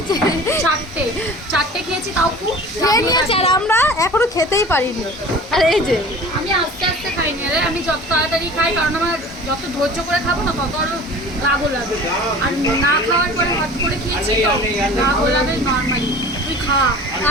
চারটে খেয়েছি তাও খুব খেয়ে নিয়েছে আর আমরা এখনো খেতেই পারিনি। আর এই যে আমি আস্তে আস্তে খাইনি রে, আমি যত তাড়াতাড়ি খাই কারণ আমার যত ধৈর্য করে খাবো না তত আরো রাগও লাগে। আর না খাওয়ার পরে হাত করে খেয়েছি তো রাগও লাগে নর্মালি। তুই খা।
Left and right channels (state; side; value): normal; both; correlation 0.41